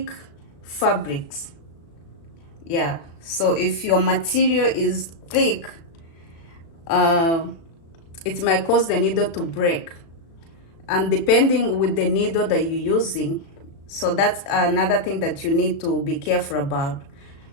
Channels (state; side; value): late; right; 36 ms